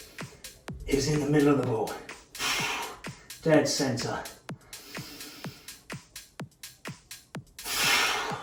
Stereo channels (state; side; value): identical; both; correlation 1.00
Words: is in the middle of the ball. Dead center.